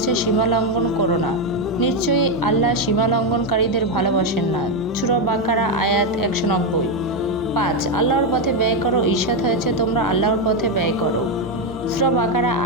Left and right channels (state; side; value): normal; both; correlation 0.06